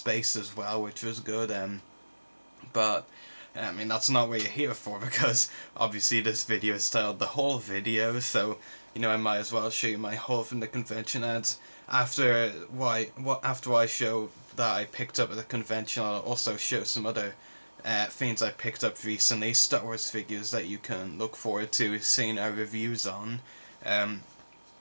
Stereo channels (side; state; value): both; inverted; correlation -1.00